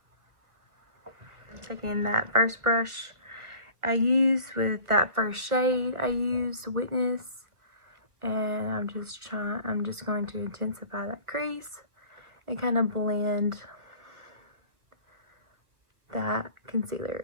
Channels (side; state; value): left; late; 1.4 ms